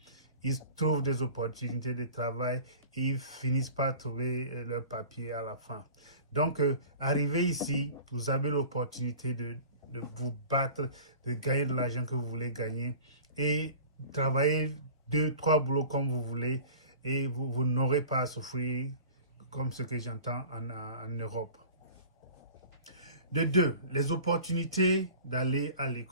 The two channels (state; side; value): inverted; both; correlation -0.42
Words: ils trouvent des opportunités de travail et ils finissent par trouver leur papier à la fin. Donc, arriver ici, vous avez l'opportunité de vous battre, de gagner de l'argent que vous voulez gagner et travailler 2, 3 boulots comme vous voulez et vous n'aurez pas à souffrir comme ce que j'entends en Europe. De deux, les opportunités d'aller à